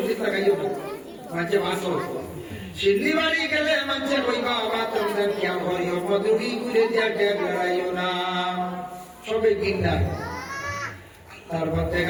লাগাইও মাঝে মাসো সিদ্ধি বাড়ি গেলে মানুষে কইবা বাবা তোমাদের কেমন করিও মজুরি করে দিয়া ট্যাগ লড়াইও না সবে গিন্দার তারপর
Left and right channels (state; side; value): identical; both; correlation 1.00